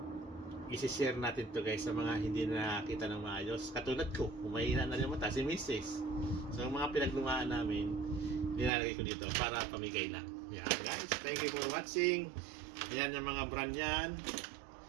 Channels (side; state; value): left; drops out; at 8.7 s